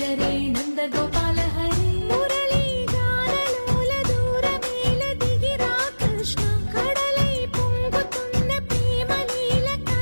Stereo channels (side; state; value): both; inverted; correlation -1.00